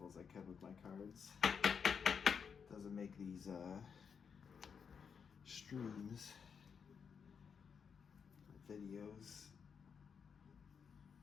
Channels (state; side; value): quieter; right; 6.5 dB